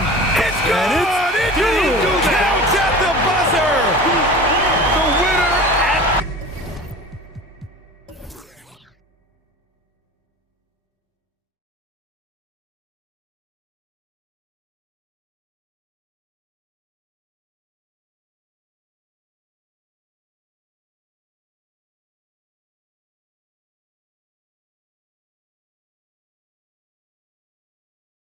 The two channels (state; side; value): normal; both; correlation 0.37